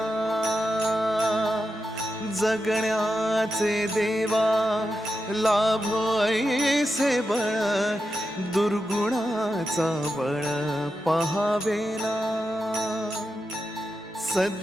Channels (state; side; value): normal; both; correlation 0.89